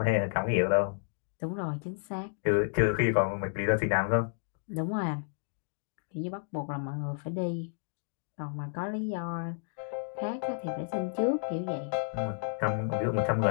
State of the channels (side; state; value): right; silent; digital silence